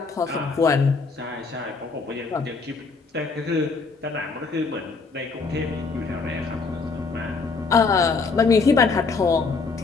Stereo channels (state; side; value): quieter; right; 4.4 dB